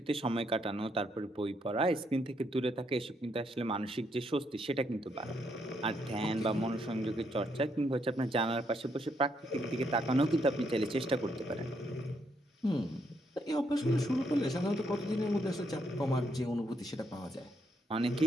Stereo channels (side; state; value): both; normal; correlation 0.76